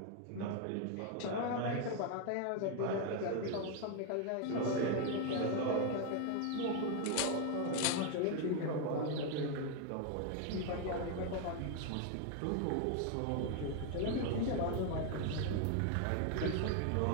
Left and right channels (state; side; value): different; both; correlation 0.01